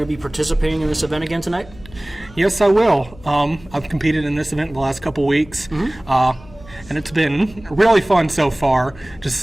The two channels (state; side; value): noise; left; hum, 21 dB below the sound